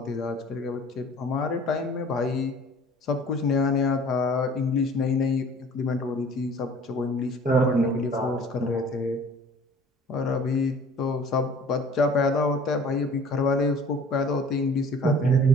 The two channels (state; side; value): normal; both; correlation 0.49